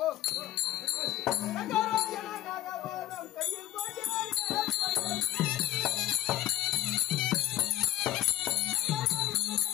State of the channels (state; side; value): quieter; right; 13.7 dB